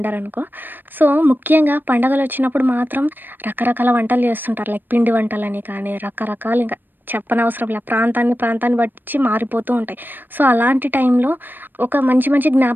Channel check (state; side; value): late; left; 0.092 ms